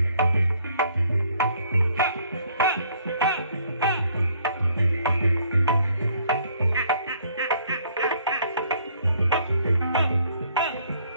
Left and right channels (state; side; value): inverted; both; correlation -0.64